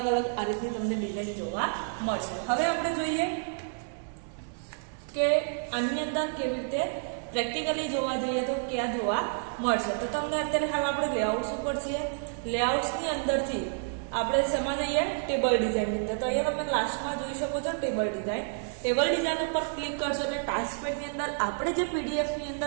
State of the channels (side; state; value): left; silent; 58 dB below the other